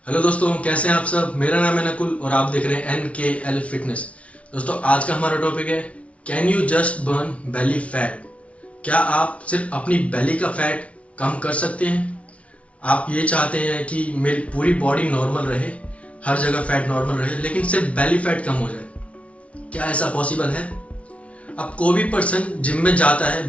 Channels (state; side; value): late; right; 0.063 ms